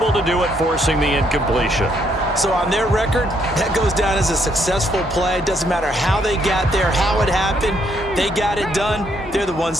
to do it, forcing the incompletion. So on their record, that goes down as a successful play. It doesn't matter how they got there, how it happened. They got it done. They're the ones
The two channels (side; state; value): both; normal; correlation 0.72